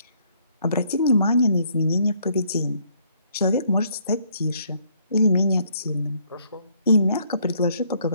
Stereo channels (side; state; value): both; inverted; correlation -0.67